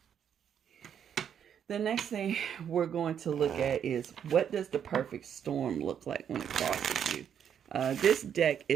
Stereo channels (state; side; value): quieter; left; 8.6 dB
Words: The next thing we're going to look at is, what does the perfect storm look like when it crosses you? This deck